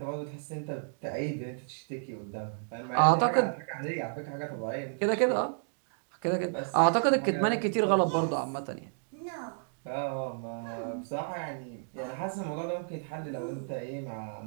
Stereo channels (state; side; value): silent; left; digital silence